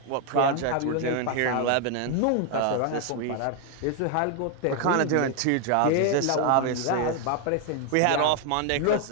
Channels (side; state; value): both; different; correlation 0.01